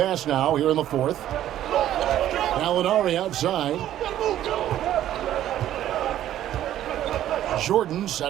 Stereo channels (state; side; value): quieter; left; 12.2 dB